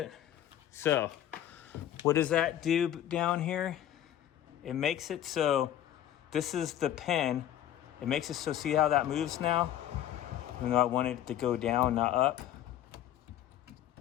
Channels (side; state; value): right; quieter; 11.6 dB